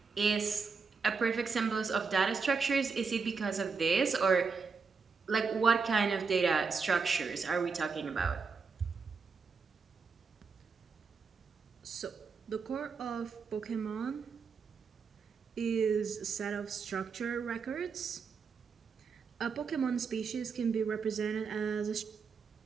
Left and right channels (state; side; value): quieter; left; 5.1 dB